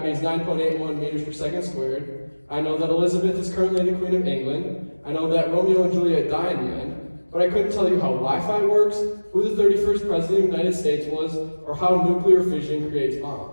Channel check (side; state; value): both; inverted; correlation -1.00